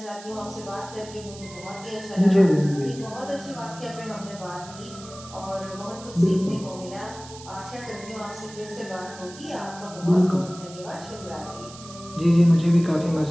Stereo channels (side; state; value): right; noise; hiss, 17 dB below the sound